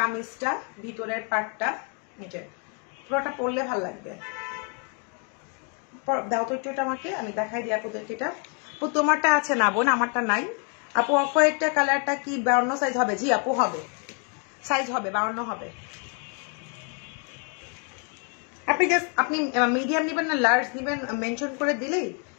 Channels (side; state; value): right; quieter; 39.2 dB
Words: ভিতরের পার্টটা, এটা পুরোটা পরলে ভালো লাগবে। দাও তো একটু এটা আমাকে, আমি দেখাই দিই আপুদেরকে। এটা আপু তোমারটা আছে না বোন, আমারটা নাই আপু। অফ হোয়াইটটা কালারটা কি 52 সাইজ হবে? জি আপু হবে, সাইজ হবে 52 হবে। আপনি জাস্ট আপনি মিডিয়াম নেবেন না লার্জ নেবেন মেনশন করে দিলেই